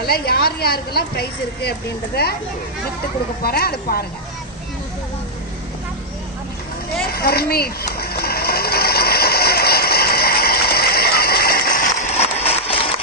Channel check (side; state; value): both; normal; correlation -0.05